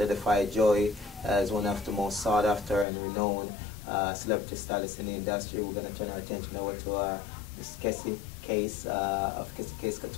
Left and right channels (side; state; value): right; drops out; at 2.9 s